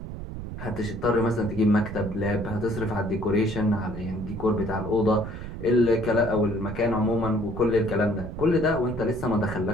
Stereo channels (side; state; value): right; noise; rumble, 9 dB below the sound